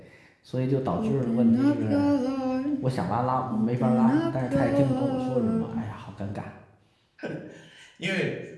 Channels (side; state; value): both; identical; correlation 1.00